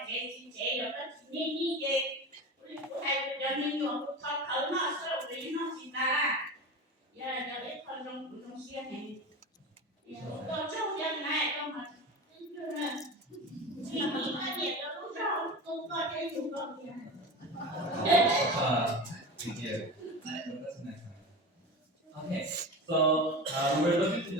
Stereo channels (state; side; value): normal; both; correlation 0.28